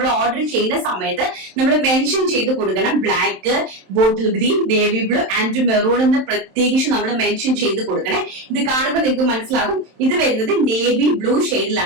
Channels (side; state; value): left; late; 27 ms